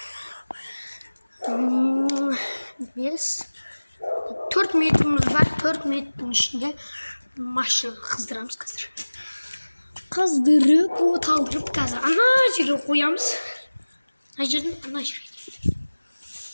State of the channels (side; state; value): both; inverted; correlation -1.00